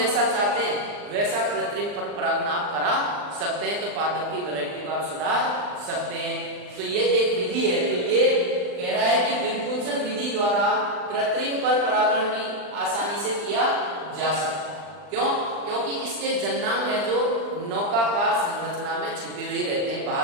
चाहते हैं वैसा कृत्रिम परपरागण आप करा सकते हैं। तो पादप की वैरायटी को आप सुधार सकते हैं। तो ये एक विधि है। तो ये कह रहा है कि विपुंसन विधि द्वारा कृत्रिम परपरागण भी आसानी से किया जा सकता है। क्यों? क्योंकि इसके जन्नांग है जो नौकाकार संरचना में छिपे हुए रहते हैं,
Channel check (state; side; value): late; left; 39 ms